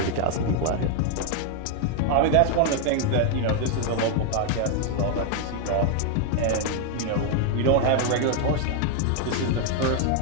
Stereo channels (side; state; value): both; different; correlation 0.00